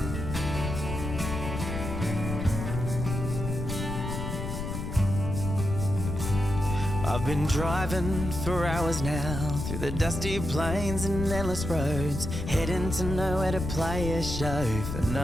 I've been driving for hours now through the dusty plains and endless roads, heading to nowhere to play a show for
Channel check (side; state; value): left; noise; rumble, 5 dB below the sound